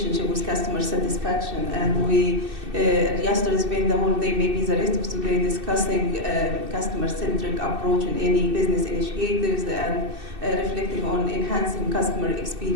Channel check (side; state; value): left; late; 2.6 ms